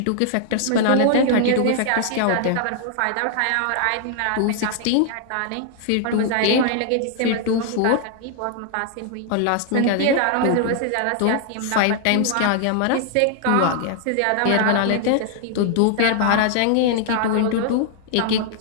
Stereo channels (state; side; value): different; both; correlation 0.00